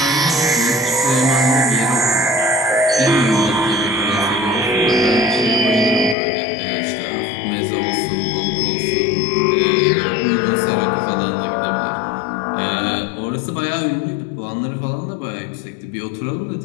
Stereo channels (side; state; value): right; drops out; at 6.2 s